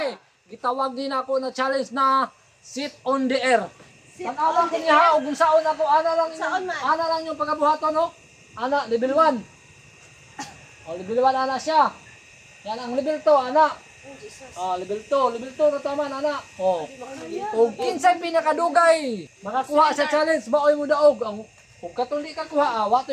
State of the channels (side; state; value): both; identical; correlation 1.00